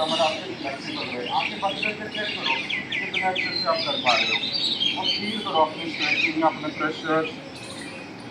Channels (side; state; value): both; identical; correlation 1.00